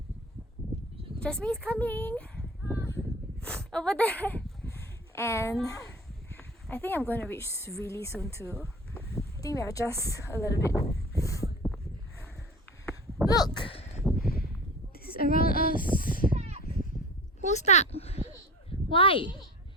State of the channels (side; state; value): both; normal; correlation 0.38